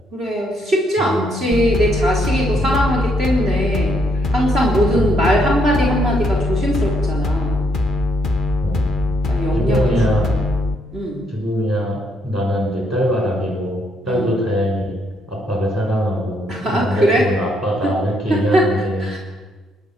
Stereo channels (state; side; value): normal; both; correlation 0.73